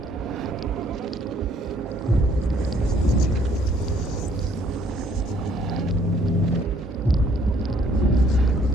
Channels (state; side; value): normal; both; correlation 0.63